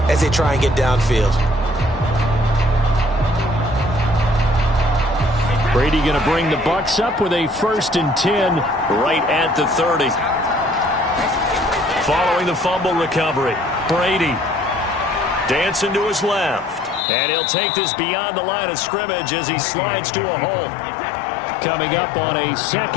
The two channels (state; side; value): drops out; right; at 17.1 s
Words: as they try and get downfield. Brady going to bring the Bucs up with a 1st and 10 right at the 30. Following the fumble recovery, Brady dancing to his left. And he'll take this beyond the line of scrimmage as he slides to a hole. Coming up on a